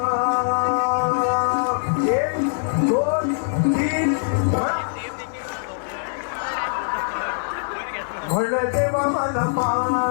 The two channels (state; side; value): silent; right; digital silence